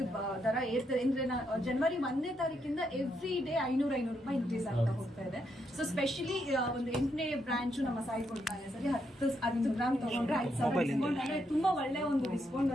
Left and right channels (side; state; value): both; normal; correlation 0.79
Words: ದರ ಏರ್ತದೆ ಅಂದ್ರೆ ಜನವರಿ 1ನೇ ತಾರೀಕಿಂದ ಎವ್ರಿ ಡೇ 500 ರೂಪಾಯಿ ಇನ್ಕ್ರೀಸ್ ಆಗ್ತಾ ಹೋಗ್ತಾ ಇದೆ. ಸೊ ಸ್ಪೆಷಲಿ ಒಂದು 8ನೇ ಬ್ರಾಂಚ್ ನಮ್ಮ ಸಾಯಿ ಕೊಡ್ತಾನೆ ಸರಿ 10 ಗ್ರಾಮ್ ತಗೊಂಡ್ರೆ 5,000 ಡಿಸ್ಕೌಂಟ್ ಅಂದ್ರೆ ತುಂಬಾ ಒಳ್ಳೆ ಒಂದು ಡಿಸ್ಕೌಂಟ್,